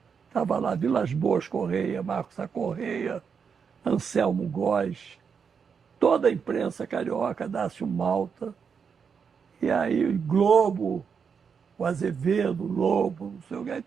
Estava lá Vilas Boas Correia, Marcos A. Correia, Anselmo Góes, toda a imprensa carioca, Dácio Malta. E aí o Globo, o Azevedo, o Lobo, não sei o que, aí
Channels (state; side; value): quieter; left; 6.4 dB